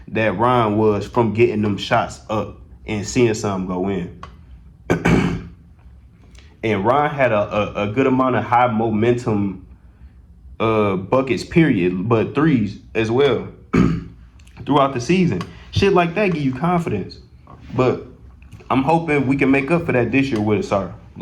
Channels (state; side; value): identical; both; correlation 1.00